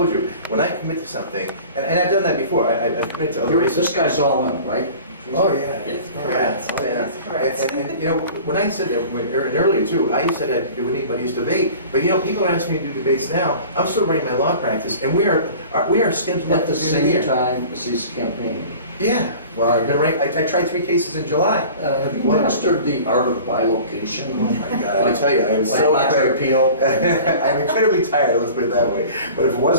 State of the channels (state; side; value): inverted; both; correlation -0.42